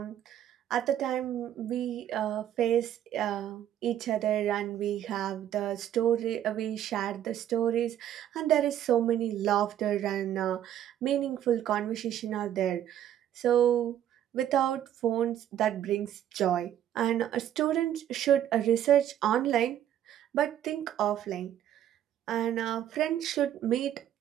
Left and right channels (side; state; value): left; quieter; 11.0 dB